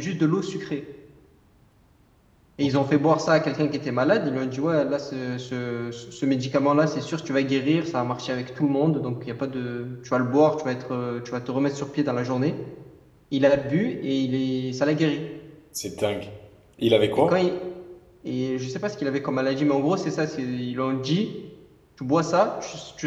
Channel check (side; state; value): both; identical; correlation 1.00